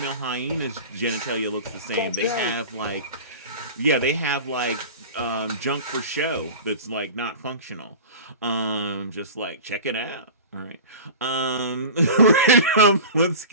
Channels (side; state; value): both; inverted; correlation -0.34